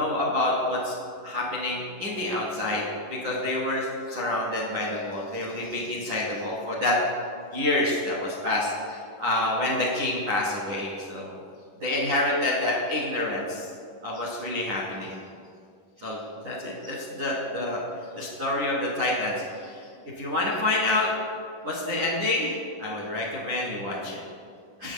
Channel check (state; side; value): late; left; 11 ms